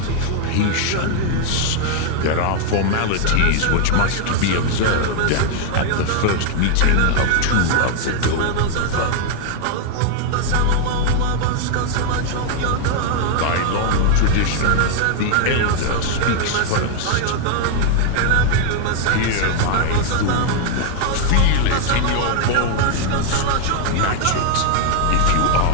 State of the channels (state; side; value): different; both; correlation 0.00